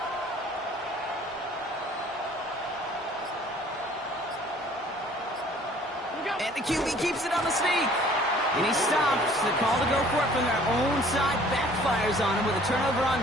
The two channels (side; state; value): both; normal; correlation 0.54